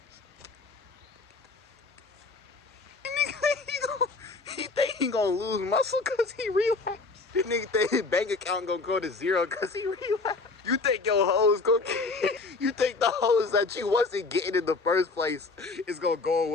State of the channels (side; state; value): right; quieter; 3.8 dB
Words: He thinking gonna lose muscle because he relapsed. You nigga think his bank account gonna go to zero because he relapsed. You think your hoes gonna you think the hoes that you wasn't getting in the first place is gonna go